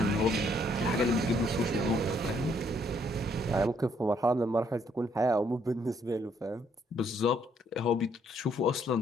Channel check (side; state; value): both; normal; correlation 0.69